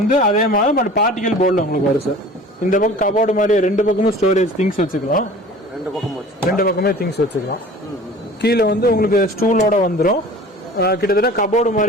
அதே மாதிரி பட் பார்ட்டிகல் போர்டில் உங்களுக்கு வரும் சார். இந்த பக்கம் கபோர்டு மாதிரி ரெண்டு பக்கமும் ஸ்டோரேஜ் திங்ஸ் வச்சுக்கலாம். ரெண்டு பக்கமே திங்ஸ் வச்சுக்கலாம். கீழே வந்து உங்களுக்கு ஸ்டூலோட வந்துடும். கிட்டத்தட்ட கபோர்டு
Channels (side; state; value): both; normal; correlation 0.43